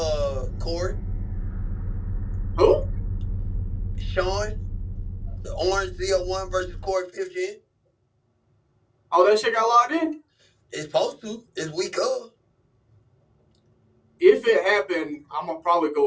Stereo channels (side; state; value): both; identical; correlation 1.00